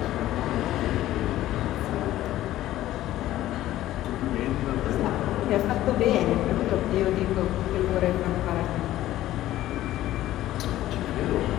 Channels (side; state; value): right; quieter; 14.3 dB